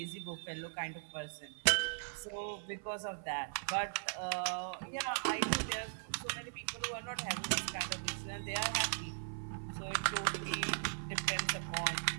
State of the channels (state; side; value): silent; left; 52 dB below the other